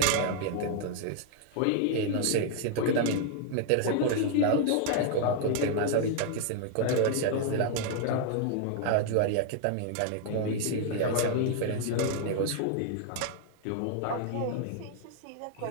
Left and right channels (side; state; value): both; different; correlation 0.00